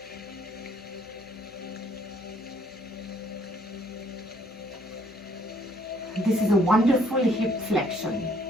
This is a wonderful hip flexion.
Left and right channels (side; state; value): left; noise; hum, 25 dB below the sound